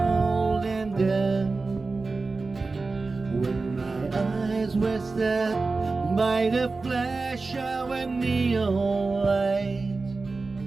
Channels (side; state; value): left; quieter; 3.8 dB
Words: and damp. When my eyes were stabbed by the flash of a neon light,